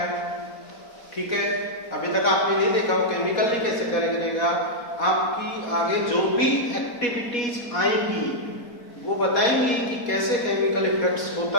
ठीक है, अभी तक आपने नहीं देखा वो केमिकली कैसे करेगा। आपकी आगे जो भी एक्टिविटीज आएंगी वो बताएंगी कि कैसे केमिकल इफेक्ट्स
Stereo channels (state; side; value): late; right; 4.2 ms